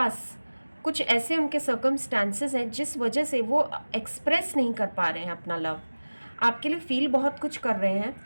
कुछ ऐसे उनके सर्कमस्टांसेस हैं जिस वजह से वो एक्सप्रेस नहीं कर पा रहे हैं अपना लव। आपके लिए फील बहुत कुछ कर रहे हैं,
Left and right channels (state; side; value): inverted; both; correlation -1.00